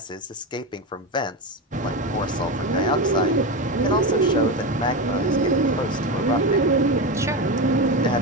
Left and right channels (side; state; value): both; normal; correlation 0.17